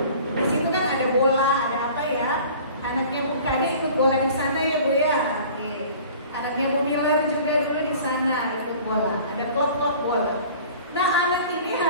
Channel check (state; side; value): inverted; both; correlation -0.46